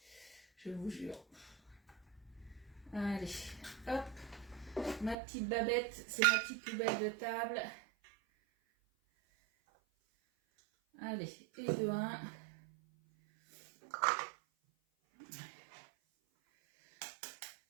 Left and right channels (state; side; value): drops out; left; at 5.2 s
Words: Je vous jure. Allez, hop. Ma petite babette, c'est ma petite poubelle de table. Allez, et de 1.